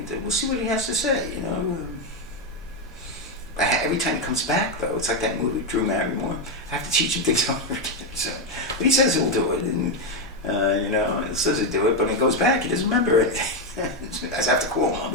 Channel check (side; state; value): both; normal; correlation 0.06